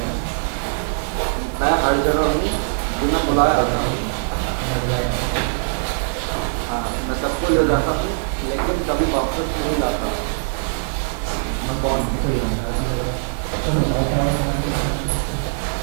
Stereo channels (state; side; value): silent; left; digital silence